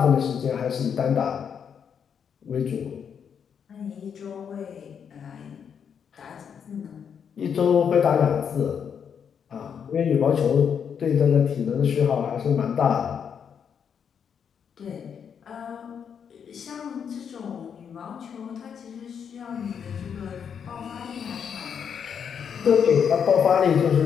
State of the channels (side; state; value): right; quieter; 7.4 dB